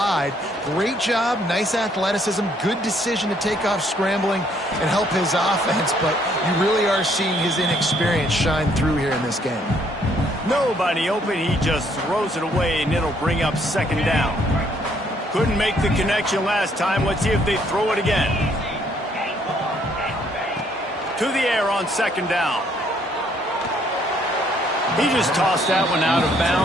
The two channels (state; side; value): normal; both; correlation 0.67